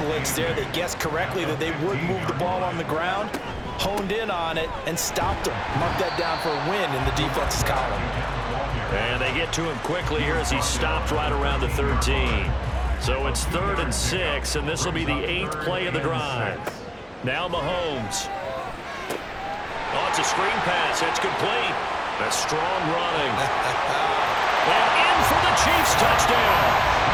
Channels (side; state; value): both; identical; correlation 1.00